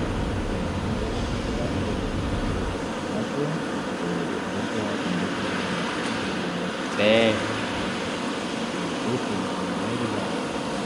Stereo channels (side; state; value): both; identical; correlation 1.00